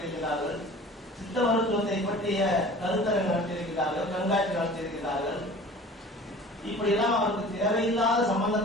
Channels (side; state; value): both; normal; correlation 0.43